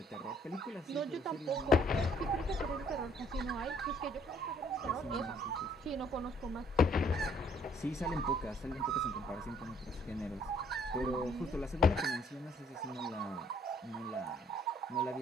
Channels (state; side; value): normal; both; correlation 0.63